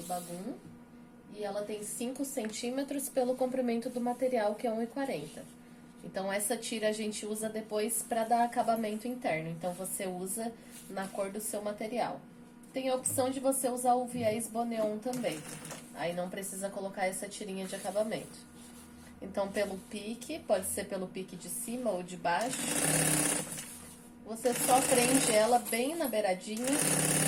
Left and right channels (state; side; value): identical; both; correlation 1.00